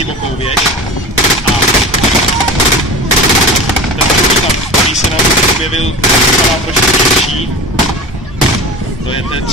věž a ten druhý tank, který se nám objevil, vypadá trošku větší. To je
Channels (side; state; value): both; normal; correlation 0.33